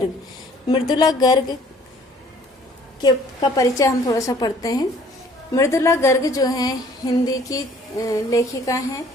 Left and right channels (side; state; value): both; normal; correlation 0.56